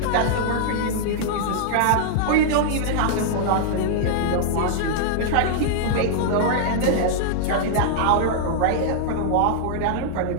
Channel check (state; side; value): different; both; correlation -0.01